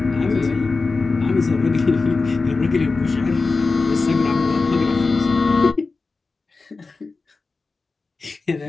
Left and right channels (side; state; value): right; quieter; 4.0 dB